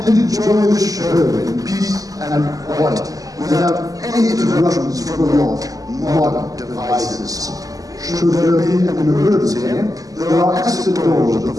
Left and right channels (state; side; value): late; left; 0.17 ms